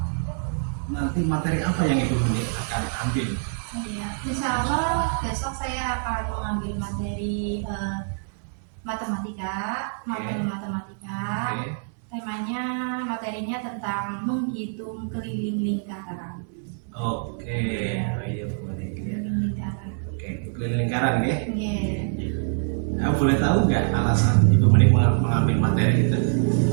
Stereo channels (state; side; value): silent; left; digital silence